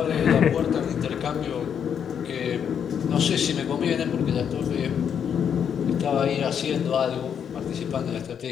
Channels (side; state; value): right; quieter; 8.0 dB